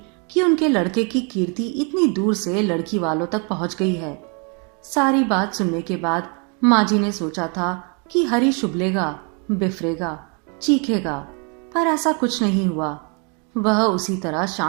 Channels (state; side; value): quieter; left; 35.5 dB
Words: कि उनके लड़के की कीर्ति इतनी दूर से लड़की वालों तक पहुंच गई है। सारी बात सुनने के बाद माँ जी ने सोचा था कि हरीश उबलेगा, बिफरेगा, चीखेगा, पर ऐसा कुछ नहीं हुआ। वह उसी तरह